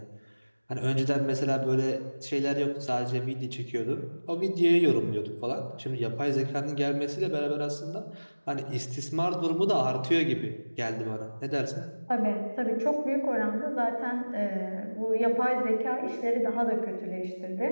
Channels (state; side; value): inverted; both; correlation -1.00